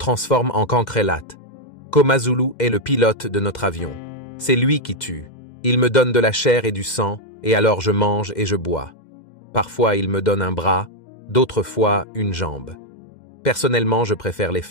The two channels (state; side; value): late; right; 2.1 ms